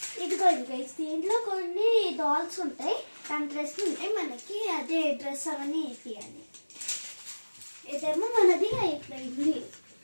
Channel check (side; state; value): both; inverted; correlation -1.00